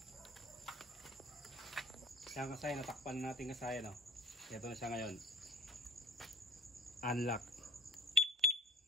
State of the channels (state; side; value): normal; both; correlation 0.47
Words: Kaya kasayan natakpan natin kasayan no. Ito na siya ngayon. Unlock.